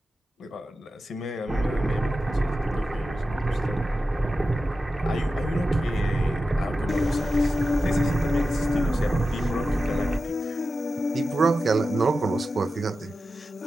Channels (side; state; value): both; normal; correlation 0.92